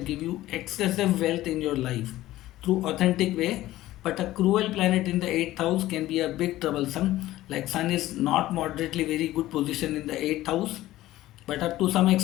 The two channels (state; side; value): quieter; right; 15.7 dB